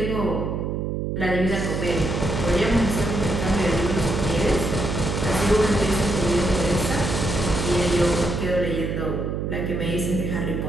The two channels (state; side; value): noise; right; hum, 2 dB below the sound